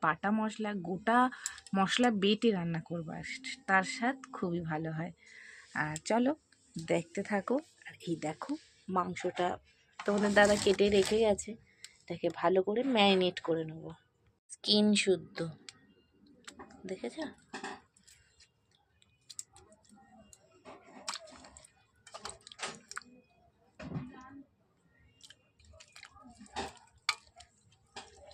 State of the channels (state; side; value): identical; both; correlation 1.00